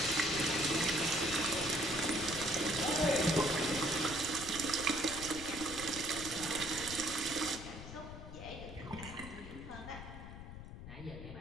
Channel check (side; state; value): left; noise; rumble, 11 dB below the sound